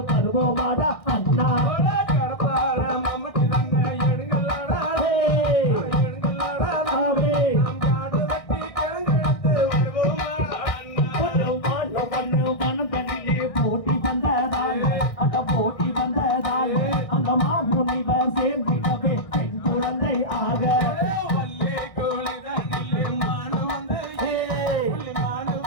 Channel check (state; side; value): late; right; 1.6 ms